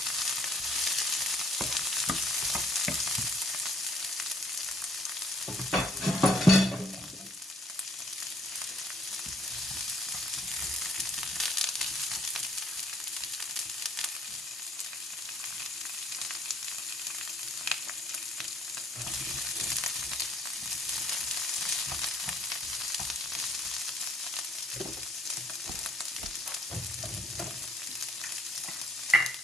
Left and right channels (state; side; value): normal; both; correlation 0.63